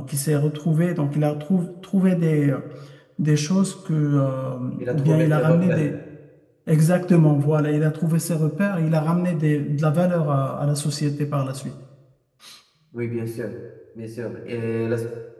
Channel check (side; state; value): both; identical; correlation 1.00